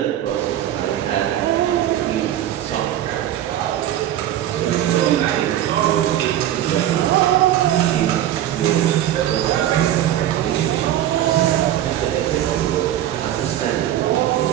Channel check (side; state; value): left; quieter; 12.1 dB